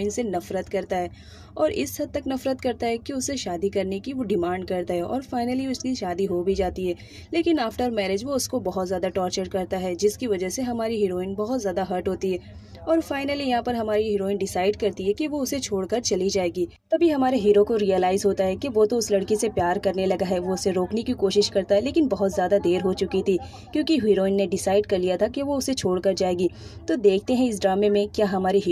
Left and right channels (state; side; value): identical; both; correlation 1.00